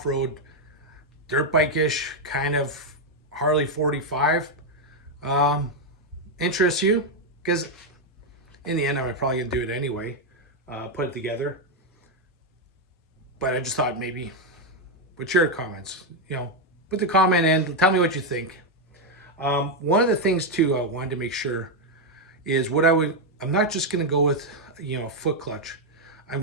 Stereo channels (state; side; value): normal; both; correlation 0.02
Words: dirt bike-ish kind of Harley 45 interests you, because in the end I'm probably gonna do it anyway, put it together. But I just thought maybe, what's your comments? You know, put the comment in, tell me what you think. One of the things too I wanted to make sure is I'm not just going to go with, you know, a foot clutch. I'm